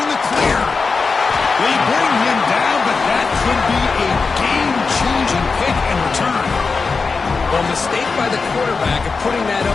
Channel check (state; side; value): quieter; right; 4.6 dB